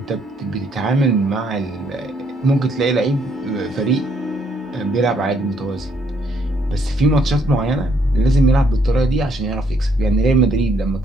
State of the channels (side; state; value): both; normal; correlation 0.69